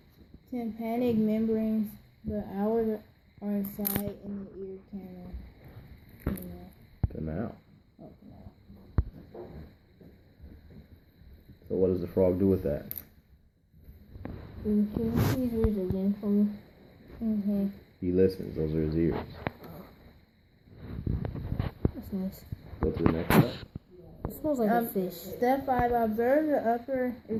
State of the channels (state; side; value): identical; both; correlation 1.00